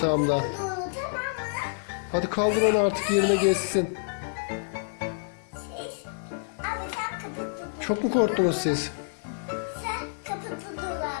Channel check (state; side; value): silent; right; digital silence